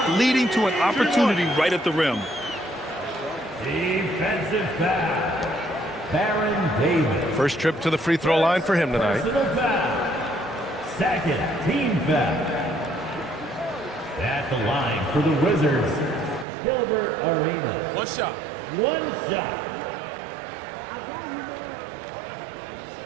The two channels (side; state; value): left; drops out; at 16.4 s